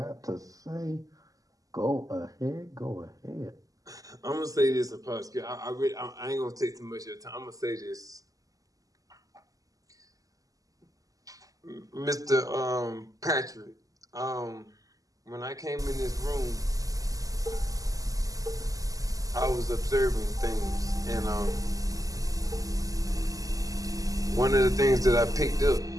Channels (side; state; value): left; late; 0.17 ms